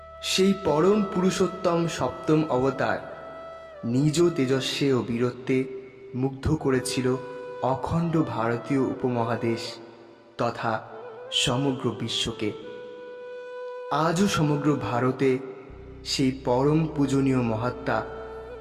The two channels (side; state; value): both; identical; correlation 1.00